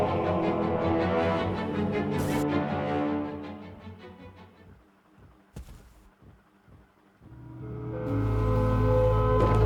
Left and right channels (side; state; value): both; identical; correlation 1.00